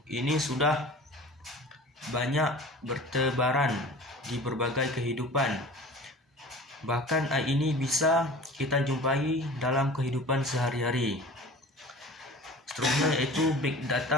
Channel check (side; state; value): both; normal; correlation 0.40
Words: ini sudah banyak bertebaran di berbagai kehidupan. Bahkan AI ini bisa kita jumpai dalam kehidupan sehari-hari. Seterusnya yaitu Big